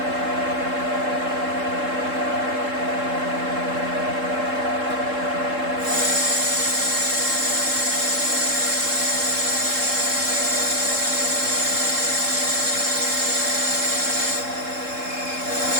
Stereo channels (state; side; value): late; left; 3.7 ms